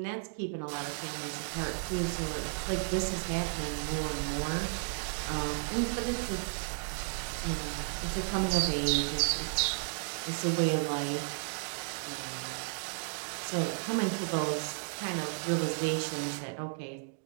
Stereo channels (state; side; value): silent; left; digital silence